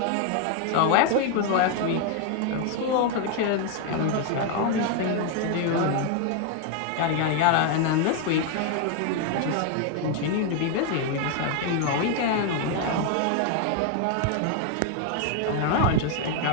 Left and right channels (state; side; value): different; both; correlation 0.01